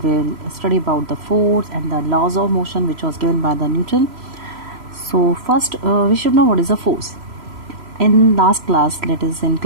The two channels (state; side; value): late; left; 3.0 ms